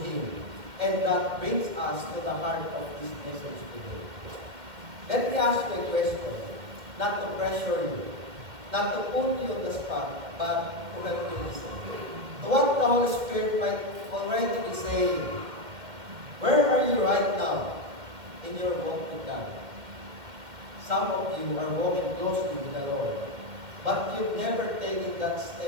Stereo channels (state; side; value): late; left; 2.1 ms